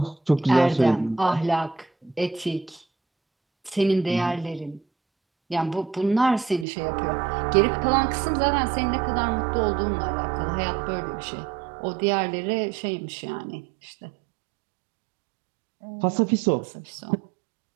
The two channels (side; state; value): left; drops out; at 6.7 s